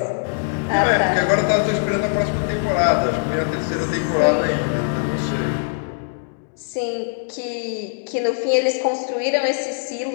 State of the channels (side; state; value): right; silent; digital silence